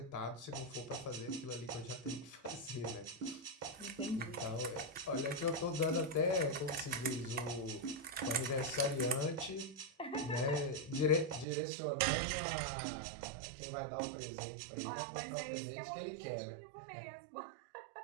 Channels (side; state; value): left; drops out; at 11.5 s